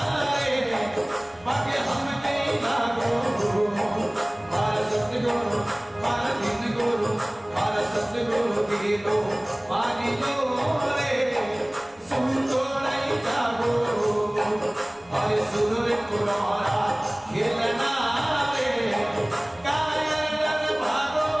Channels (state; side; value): noise; left; rumble, 29 dB below the sound